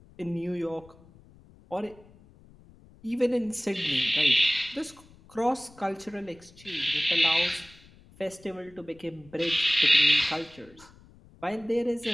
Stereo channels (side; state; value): left; noise; rumble, 25 dB below the sound